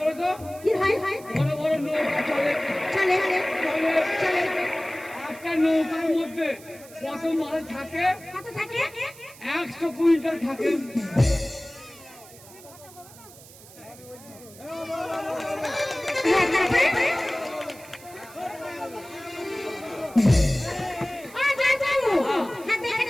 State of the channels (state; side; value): noise; right; hiss, 20 dB below the sound